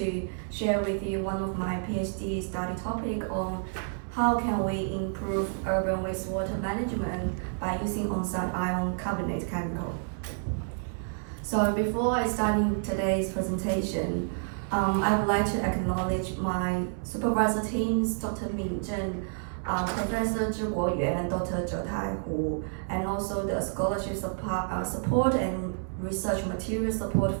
share with you one of my PhD study topic on how can we improve urban wastewater management by using on-site ion carbonate chemical. So before I start today's presentation, I would like to acknowledge my supervisor teams, Dr. Min Zhen, Professor Zhi Guoyuan, Dr. Zhe Tai Hu, and also the scholarship support and research material support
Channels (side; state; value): left; silent; 58 dB below the other